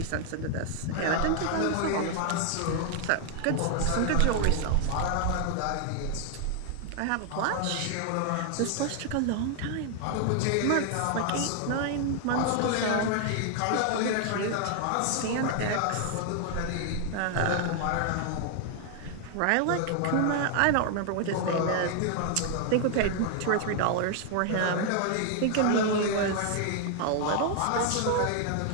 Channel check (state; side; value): different; both; correlation 0.00